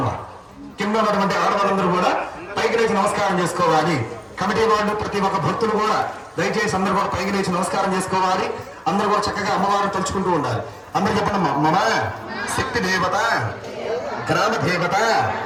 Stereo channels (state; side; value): identical; both; correlation 1.00